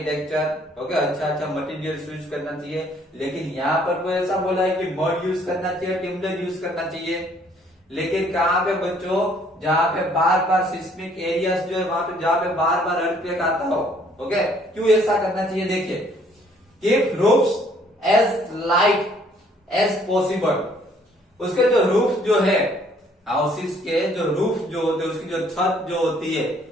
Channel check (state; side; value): normal; both; correlation 0.62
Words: ओके, अच्छा मटेरियल यूज करना चाहिए। लेकिन यहाँ पर कोई ऐसा बोला है कि मड यूज करना चाहिए, टिम्बर यूज करना चाहिए। लेकिन कहाँ पे बच्चों, जहाँ पे बार बार सिस्मिक एरियाज जो है वहां पे जहाँ पे बार बार अर्थक्वेक आता हो, ओके, क्यों ऐसा करना चाहिए? देखिए, keep roofs as light as possible. उसके जो रूफ जो है, हाउसेस के जो रूफ जो होते हैं, उसकी जो छत जो होती है,